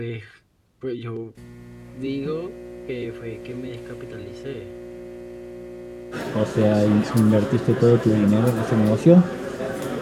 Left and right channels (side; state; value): both; identical; correlation 1.00